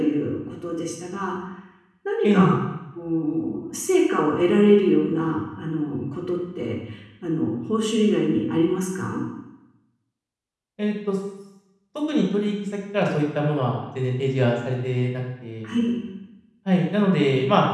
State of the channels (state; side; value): identical; both; correlation 1.00